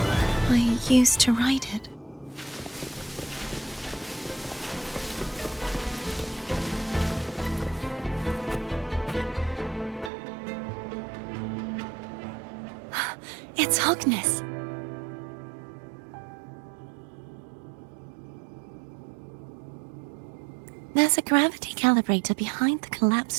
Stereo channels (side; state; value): left; drops out; at 10.1 s